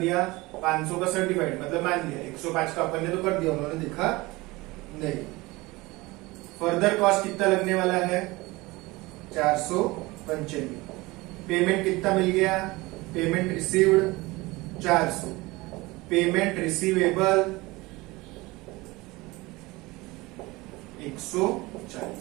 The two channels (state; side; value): quieter; left; 21.8 dB